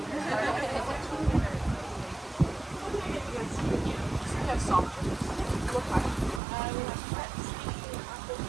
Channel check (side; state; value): left; drops out; at 6.4 s